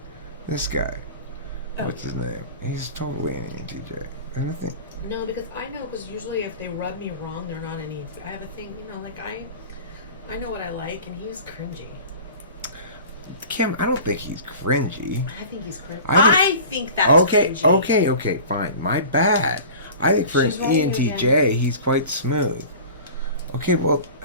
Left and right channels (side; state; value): both; inverted; correlation -0.40